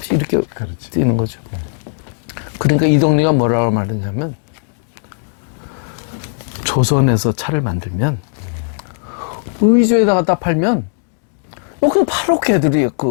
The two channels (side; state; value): right; silent; digital silence